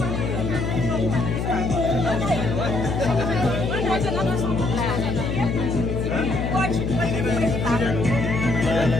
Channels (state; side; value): noise; left; hum, 2 dB below the sound